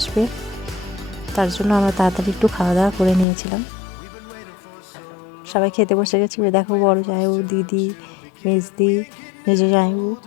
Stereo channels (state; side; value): drops out; right; at 3.2 s